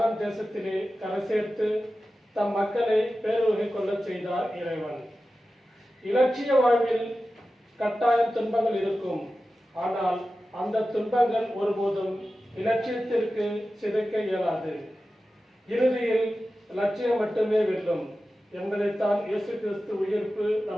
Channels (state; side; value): normal; both; correlation 0.94